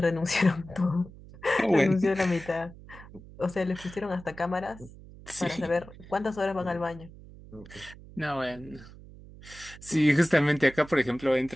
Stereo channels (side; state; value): right; noise; hum, 18 dB below the sound